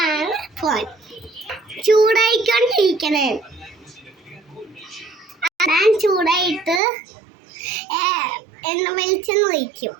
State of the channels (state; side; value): drops out; left; at 6.8 s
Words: ഫോൺ ചൂടായിക്കൊണ്ടിരിക്കണേ. ഞാൻ ചൂടായിട്ട് എണ്ണ വെളിച്ചെണ്ണ ഒഴിക്കും.